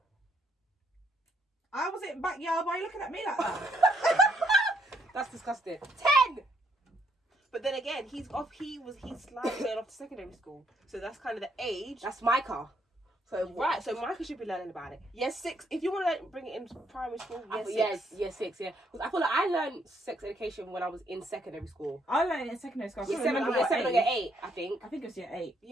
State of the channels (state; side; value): normal; both; correlation 0.72